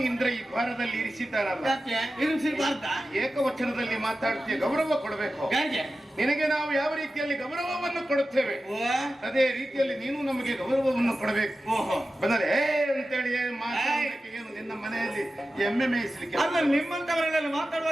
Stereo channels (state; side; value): normal; both; correlation 0.93